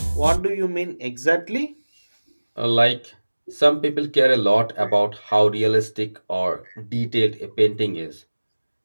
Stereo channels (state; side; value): inverted; both; correlation -1.00